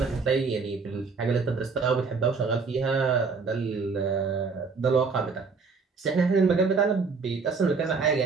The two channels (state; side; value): quieter; left; 4.7 dB